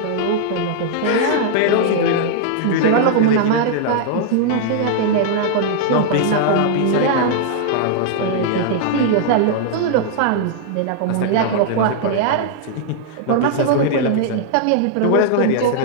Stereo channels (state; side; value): different; both; correlation -0.01